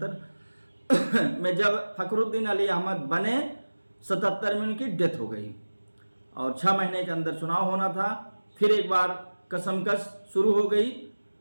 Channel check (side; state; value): both; inverted; correlation -1.00